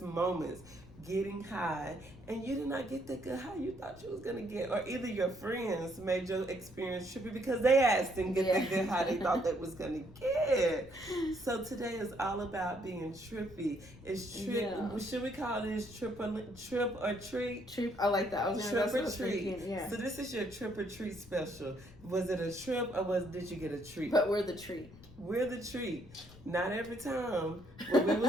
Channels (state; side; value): noise; left; rumble, 20 dB below the sound